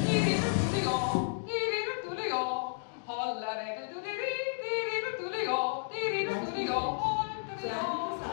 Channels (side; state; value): right; silent; digital silence